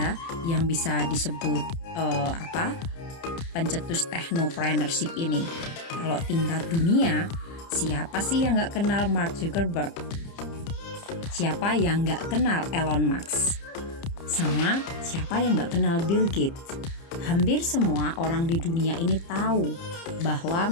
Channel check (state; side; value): late; right; 30 ms